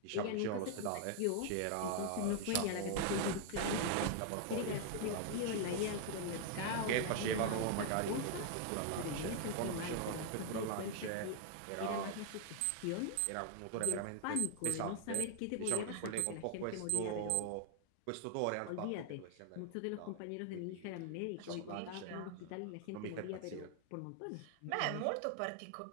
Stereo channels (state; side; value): different; both; correlation 0.00